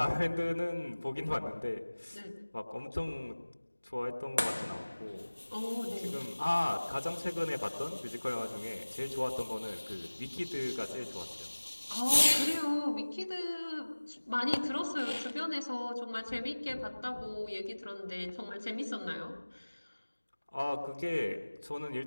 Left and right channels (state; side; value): inverted; both; correlation -1.00